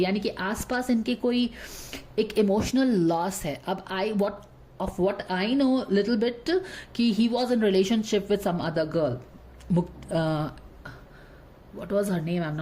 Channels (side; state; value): both; identical; correlation 1.00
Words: कि आसपास इनके कोई एक इमोशनल लॉस है। अब what I know little bit कि he was in relationship with some other girl. What was her name? I'm